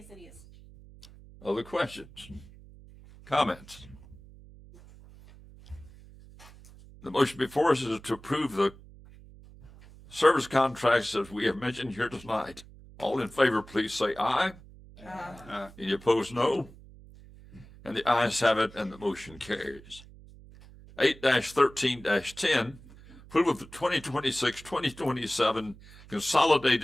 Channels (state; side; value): noise; right; hum, 21 dB below the sound